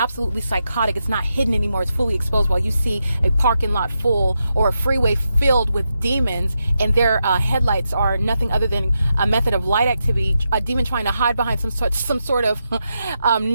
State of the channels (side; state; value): both; inverted; correlation -0.86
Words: psychotic. It's not hidden anymore. It's fully exposed while you see a parking lot full or a freeway filled with demons, and their headlights are nothing other than a method of light activity, a demon trying to hide behind some sort of